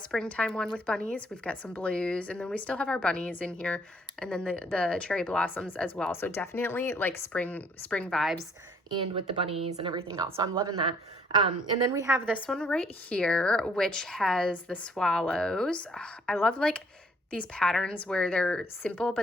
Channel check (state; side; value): normal; both; correlation 0.63